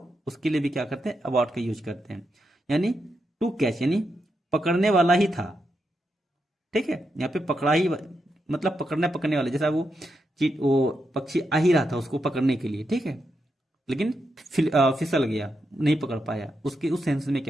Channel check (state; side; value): normal; both; correlation 0.84